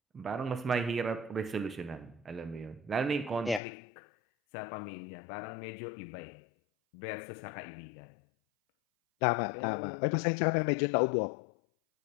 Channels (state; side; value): drops out; right; at 3.6 s